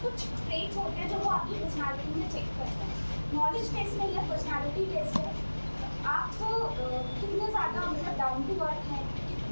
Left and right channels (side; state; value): both; inverted; correlation -1.00